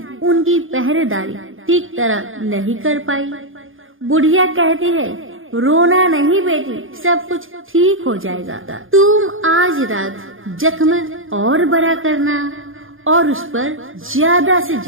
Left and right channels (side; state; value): left; late; 0.59 ms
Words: उनकी पहरेदारी ठीक तरह नहीं कर पाई। बुढ़िया कहती है, रोना नहीं बेटी, सब कुछ ठीक हो जाएगा। तुम आज रात जख्म और बड़ा करना और उस पर ज्यादा से